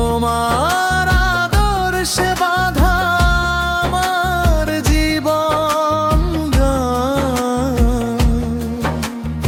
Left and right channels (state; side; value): identical; both; correlation 1.00